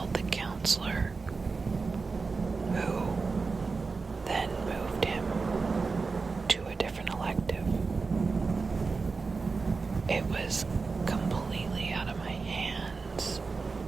the counselor, who then moved him to a different elective. It was completely out of my hands.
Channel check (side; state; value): left; quieter; 4.3 dB